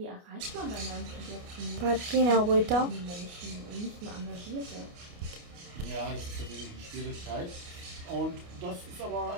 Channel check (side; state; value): left; late; 29 ms